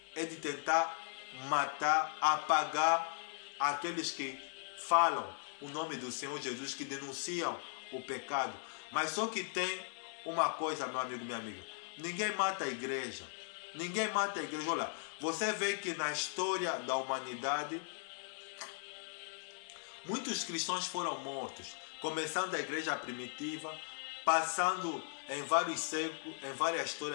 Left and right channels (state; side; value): silent; right; digital silence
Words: é de tentar matar, apagar aqueles que falam o nome do Senhor Jesus, que denunciam o pecado. Mas só que tem uma coisa, meu amigo, minha amiga: ninguém mata a igreja. Ninguém mata a igreja. Olha, você vê que na história da humanidade muitos cristãos foram mortos, começando da igreja primitiva, passando em vários séculos, em várias